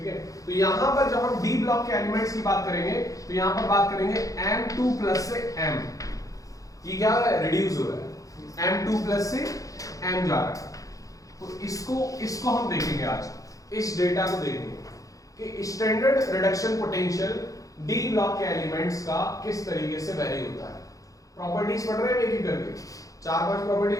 है, तो यहां पर जब हम डी ब्लॉक के एलिमेंट्स की बात करेंगे तो यहां पर बात करेंगे M2+ से M, ये क्या हो रहा है, रिड्यूस हो रहा है, M2+ से M जा रहा है। तो इसको हम देखेंगे आज, इस डेटा को देखेंगे कि standard reduction potential D block के एलिमेंट्स का किस तरीके से वेरी होता है। प्रॉपर्टीज पढ़ रहे हैं एक एक करके, 4-5 प्रॉपर्टी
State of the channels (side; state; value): right; late; 0.17 ms